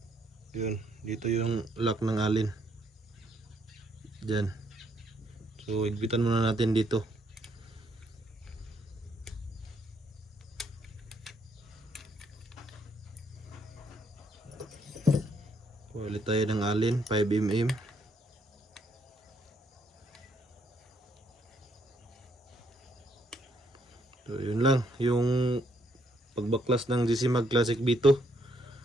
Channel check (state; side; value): normal; both; correlation 0.71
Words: Yun. Dito yung lock ng alin. Diyan. So higpitan muna natin dito. Kuha ulit tayo ng alin, 5mm. So yun lang, yung pagbaklas ng GC Mag Classic B2.